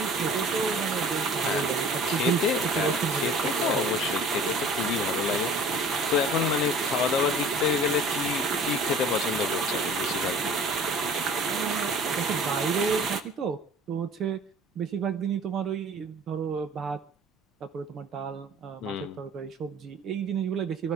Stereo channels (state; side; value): normal; both; correlation 0.46